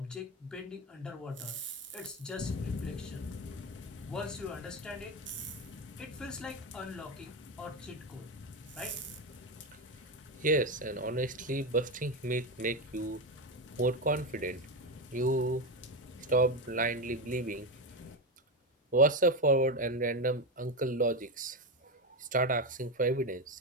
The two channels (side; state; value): both; normal; correlation 0.14